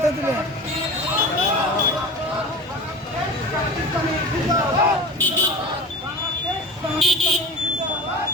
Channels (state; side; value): normal; both; correlation 0.32